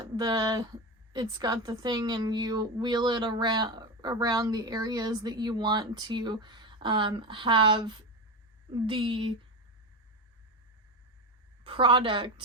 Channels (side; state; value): both; normal; correlation 0.18